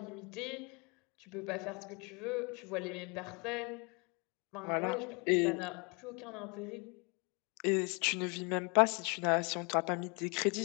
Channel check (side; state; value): right; quieter; 31.5 dB